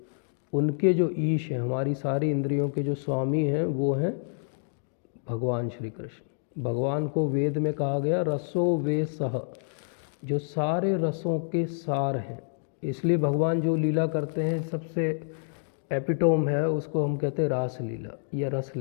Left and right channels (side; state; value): right; silent; digital silence